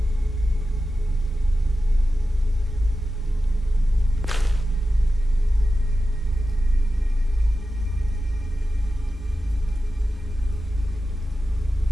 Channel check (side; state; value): both; normal; correlation 0.93